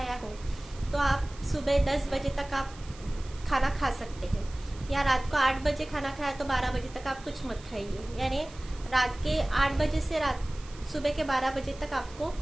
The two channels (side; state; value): right; noise; hiss, 20 dB below the sound